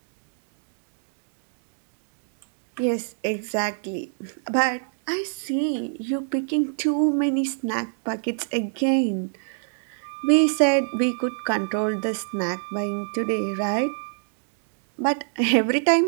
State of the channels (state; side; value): silent; left; digital silence